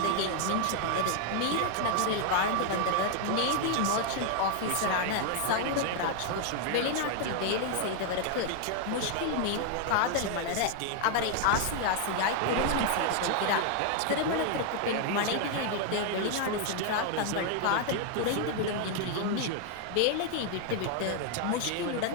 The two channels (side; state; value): both; different; correlation 0.00